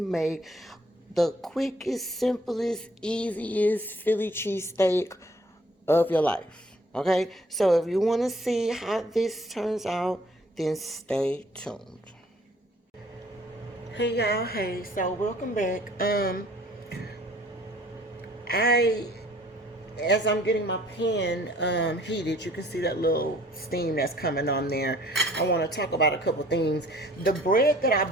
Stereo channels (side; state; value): both; normal; correlation 0.57